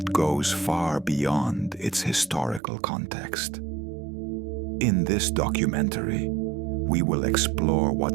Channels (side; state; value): left; drops out; at 2.6 s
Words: goes far beyond its historical context. In this documentary, we will explore